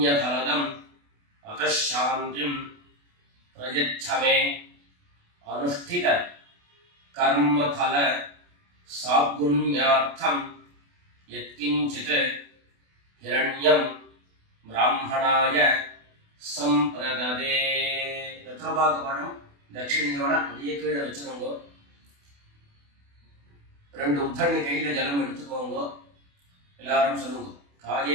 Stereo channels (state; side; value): late; left; 28 ms